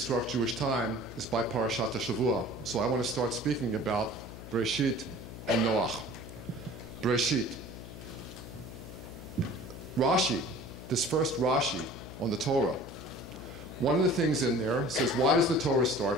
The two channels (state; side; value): noise; left; hum, 13 dB below the sound